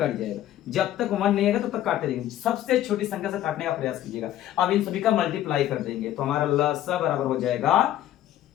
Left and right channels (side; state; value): right; quieter; 12.6 dB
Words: जाएगा, जब तक 1 नहीं आएगा तब तक काटते रहेंगे, सबसे छोटी संख्या से काटने का प्रयास कीजिएगा। अब इन सभी का मल्टीप्लाई कर देंगे तो हमारा लसा बराबर हो जाएगा